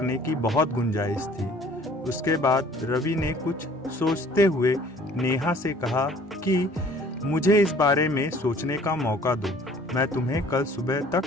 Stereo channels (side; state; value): both; normal; correlation 0.53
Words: की बहुत गुंजाइश थी। उसके बाद रवि ने कुछ सोचते हुए नेहा से कहा कि मुझे इस बारे में सोचने का मौका दो, मैं तुम्हें कल सुबह तक